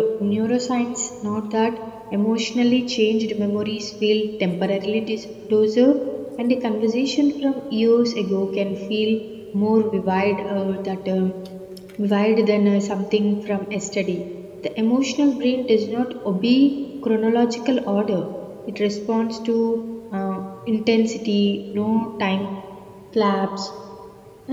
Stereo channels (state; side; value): identical; both; correlation 1.00